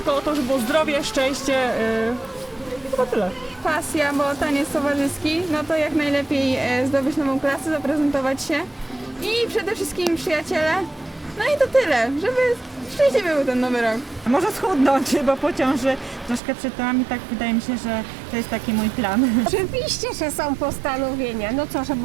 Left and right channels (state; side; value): drops out; left; at 16.4 s